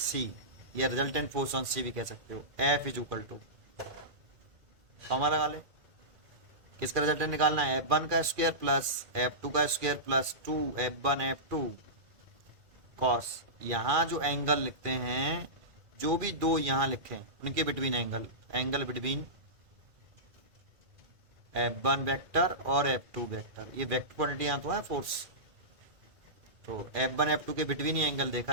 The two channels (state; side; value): late; left; 2.4 ms